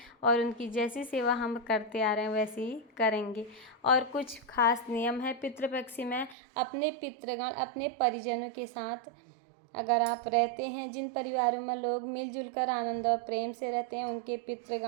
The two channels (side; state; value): left; drops out; at 6.4 s